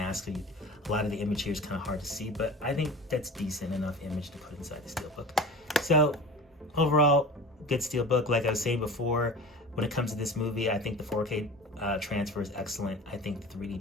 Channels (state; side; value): normal; both; correlation 0.36